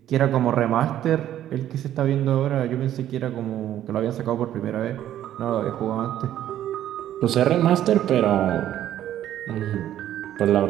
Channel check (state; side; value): quieter; left; 11.8 dB